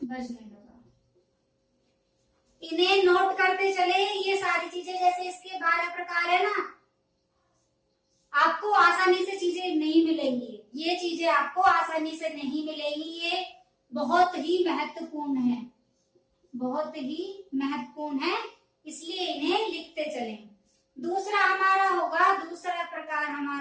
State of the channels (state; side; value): identical; both; correlation 1.00